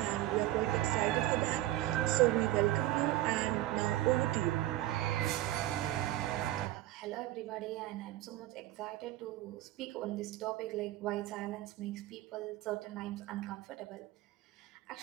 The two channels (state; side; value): quieter; left; 15.2 dB